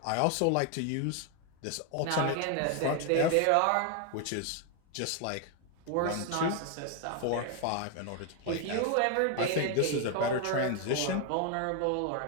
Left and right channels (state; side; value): different; both; correlation 0.01